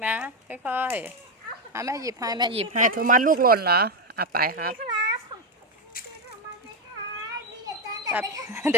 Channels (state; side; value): normal; both; correlation 0.08